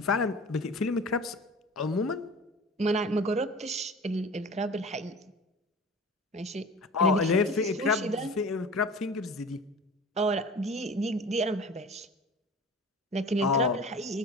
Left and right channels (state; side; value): normal; both; correlation 0.39